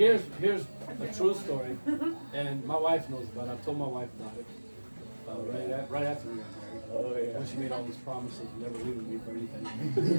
a true story, and my wife knows about it. I've told my wife about it. Right after we got married. Oh yeah. When she made all these promises, never leaving me for anything.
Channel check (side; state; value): both; inverted; correlation -1.00